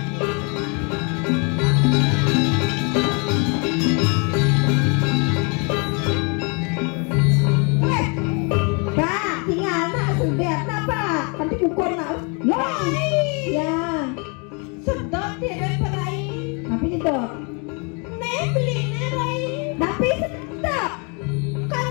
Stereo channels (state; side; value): quieter; right; 33.6 dB